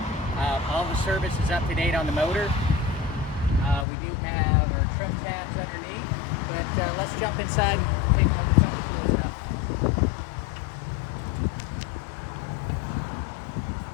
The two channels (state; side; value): drops out; right; at 3.9 s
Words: All the service is up to date on the motor. We do have our trim tabs underneath, but let's jump inside and take a look at some of the cool stuff.